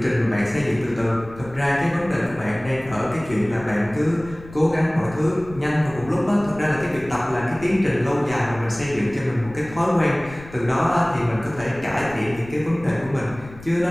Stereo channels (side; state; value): left; noise; rumble, 18 dB below the sound